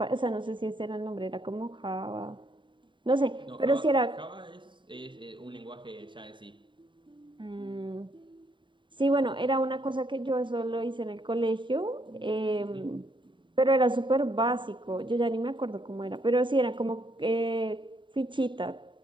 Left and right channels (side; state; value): left; late; 0.23 ms